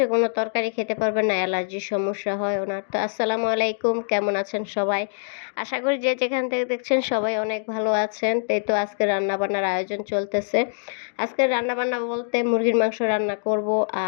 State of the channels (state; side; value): silent; right; digital silence